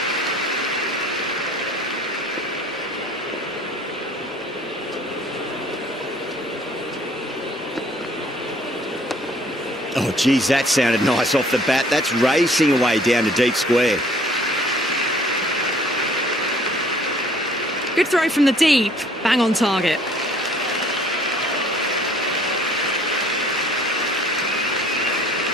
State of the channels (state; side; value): normal; both; correlation 0.56